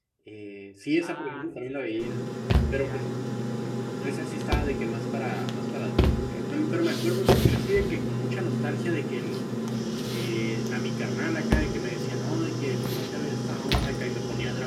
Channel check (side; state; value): both; identical; correlation 1.00